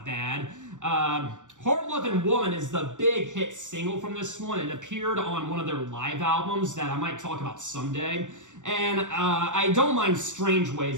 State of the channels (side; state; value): left; late; 0.85 ms